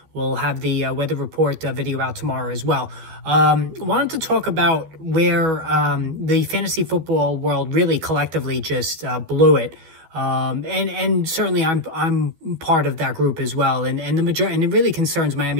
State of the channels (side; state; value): left; late; 12 ms